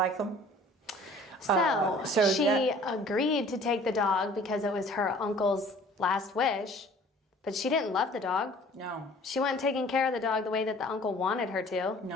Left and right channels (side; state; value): both; normal; correlation 0.50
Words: them? So she agreed to take the dog because it was her uncle's last wish, but she didn't love the dog. No. She wasn't taking care of the dog the way that the uncle wanted her to.